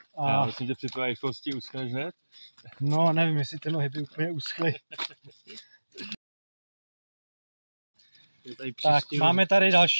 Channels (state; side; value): inverted; both; correlation -1.00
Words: A já myslím, že při tvé rychlosti uschneš hned? No, nevím, jestli ty nohy by úplně uschly. Tak, máme tady